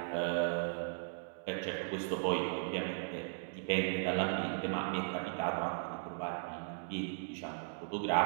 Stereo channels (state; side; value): silent; left; digital silence